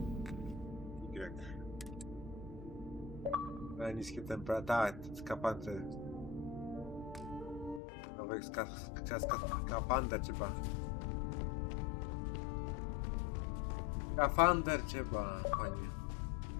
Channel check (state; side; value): drops out; right; at 7.8 s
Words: Y. Niskie temperatury, tak, skafander. Nowych skafander trzeba. Skafander trzeba, panie.